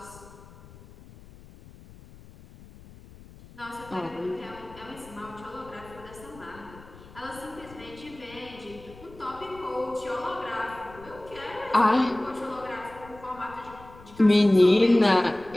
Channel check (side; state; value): left; noise; rumble, 20 dB below the sound